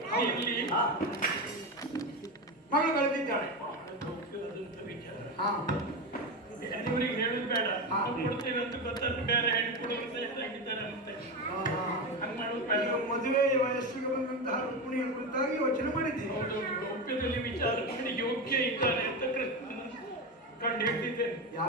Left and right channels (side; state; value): both; normal; correlation 0.17